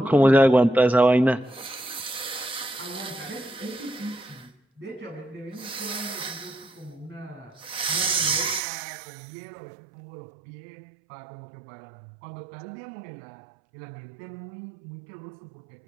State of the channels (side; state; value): left; drops out; at 8.6 s